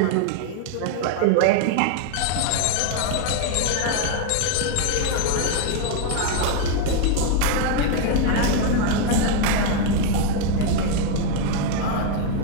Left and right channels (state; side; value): different; both; correlation 0.01